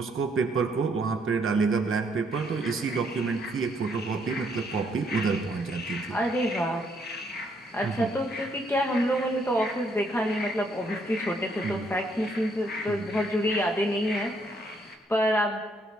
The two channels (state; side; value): normal; both; correlation 0.71